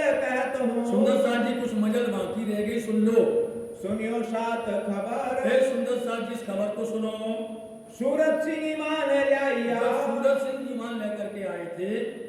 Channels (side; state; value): both; identical; correlation 1.00